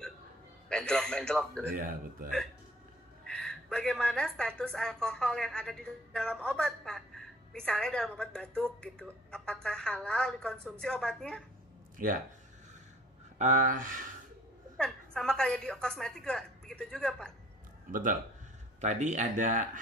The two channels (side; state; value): both; normal; correlation 0.54